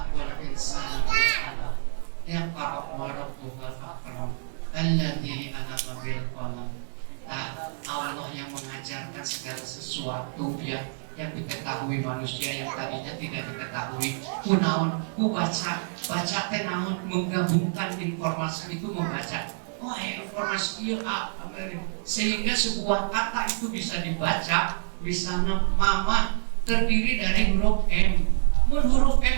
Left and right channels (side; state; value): left; silent; digital silence